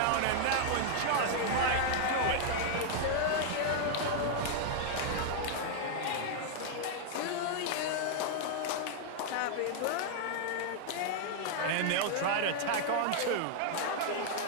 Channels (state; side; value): different; both; correlation -0.01